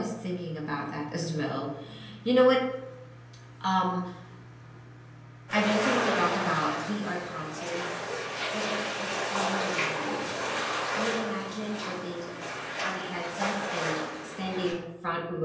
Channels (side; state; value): both; identical; correlation 1.00